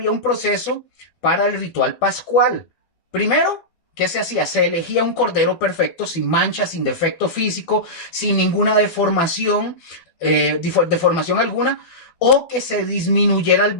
un proceso para el ritual pascual. Primero, ¿qué se hacía? Se elegía un cordero perfecto, sin mancha, sin defecto físico, sin ninguna deformación, deformación alguna, o que se disminuyera el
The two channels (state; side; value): late; right; 12 ms